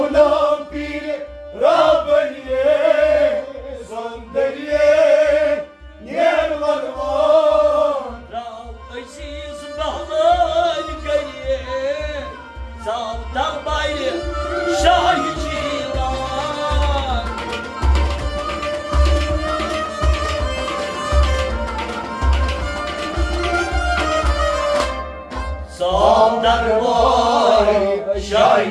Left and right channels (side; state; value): both; identical; correlation 1.00